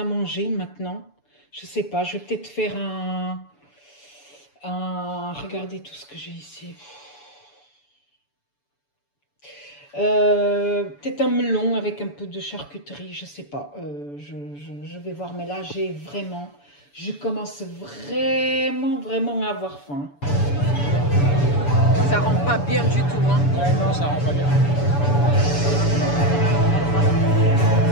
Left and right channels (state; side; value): late; right; 7.0 ms